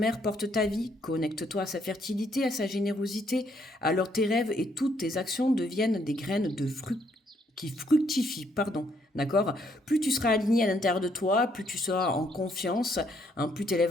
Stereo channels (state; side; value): normal; both; correlation 0.70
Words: porte ta vie. Connecte-toi à sa fertilité, à sa générosité. Alors tes rêves et toutes tes actions deviennent des graines qui fructifient, d'accord? Plus tu seras aligné à l'intérieur de toi, plus tu seras en confiance, hein, plus tu